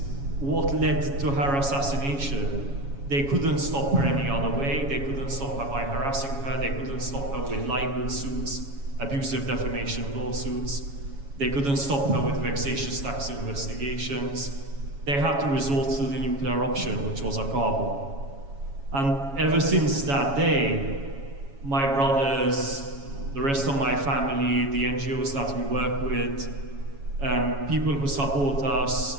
what led to her assassination. They couldn't stop her any other way. They couldn't stop her by harassing her. They couldn't stop her with libel suits, abusive defamation lawsuits. They couldn't stop her with vexatious tax investigations. They had to resort to the nuclear option, which was a car bomb. And ever since that day, my brothers, the rest of my family, the NGOs that we work with, people who support us,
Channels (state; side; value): late; left; 7.2 ms